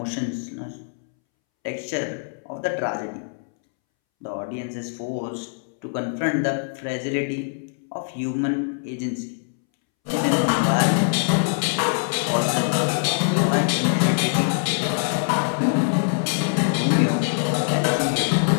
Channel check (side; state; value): right; silent; 63 dB below the other